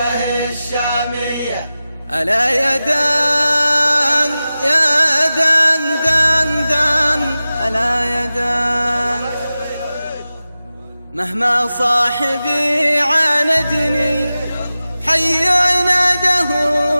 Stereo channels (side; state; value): both; inverted; correlation -0.95